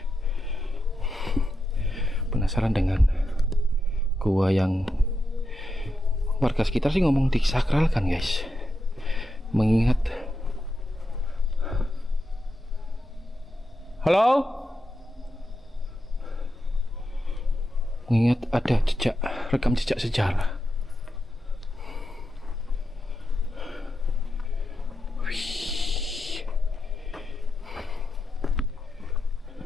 Penasaran dengan gua yang warga sekitar sih ngomong disakralkan guys, mengingat mengingat ada rekam jejak sejarah.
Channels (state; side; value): normal; both; correlation 0.87